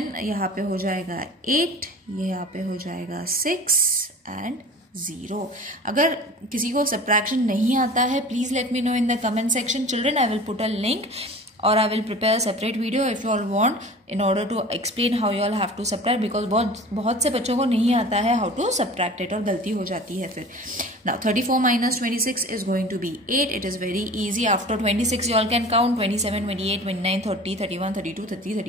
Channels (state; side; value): normal; both; correlation 0.39